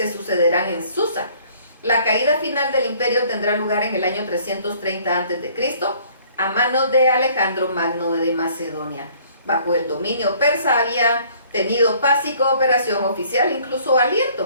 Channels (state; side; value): inverted; both; correlation -0.57